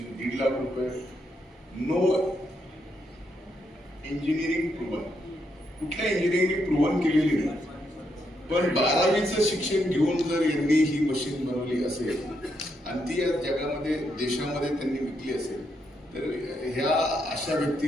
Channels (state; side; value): normal; both; correlation 0.79